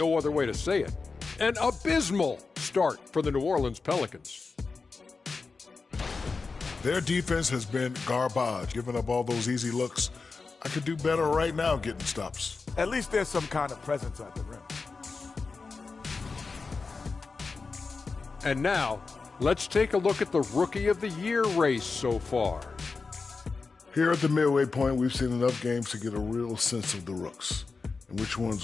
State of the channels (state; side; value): quieter; right; 4.4 dB